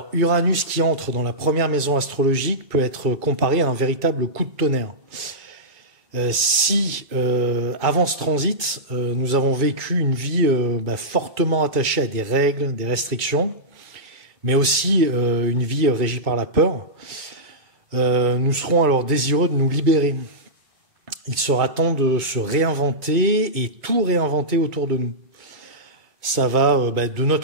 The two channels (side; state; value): left; late; 2.3 ms